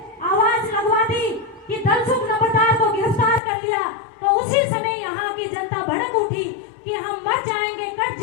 आवाज लगवा दी कि धनसुख नंबरदार को गिरफ्तार कर लिया। तो उसी समय यहाँ की जनता भड़क उठी कि हम मर जाएंगे, कट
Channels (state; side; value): drops out; right; at 3.4 s